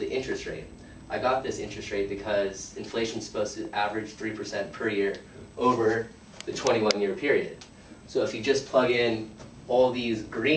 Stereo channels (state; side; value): identical; both; correlation 1.00